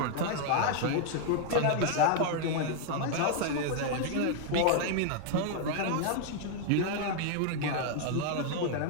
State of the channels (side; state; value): both; different; correlation 0.00